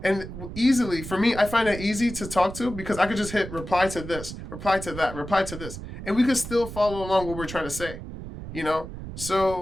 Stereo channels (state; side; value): noise; right; rumble, 10 dB below the sound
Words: And easily, for me, I find it easy to talk to because I could just hit reply to this, reply to that, reply to this. And we could still follow along what we're trying to say,